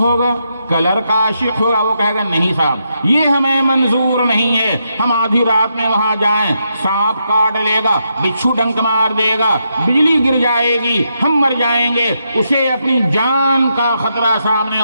کلر کا عاشق ہوگا، وہ کہے گا نہیں صاحب یہ ہمیں منظور نہیں ہے، ہم آدھی رات میں وہاں جائیں، سانپ کاٹ لے گا، بچھو ڈنک مار دے گا، بجلی گر جائے گی، ہم مر جائیں گے، اسے اپنی جان کا خطرہ سامنے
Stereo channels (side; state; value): both; inverted; correlation -0.81